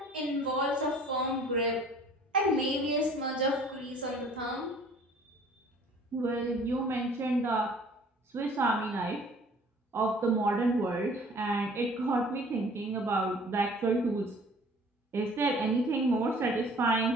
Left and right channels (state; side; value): normal; both; correlation 0.52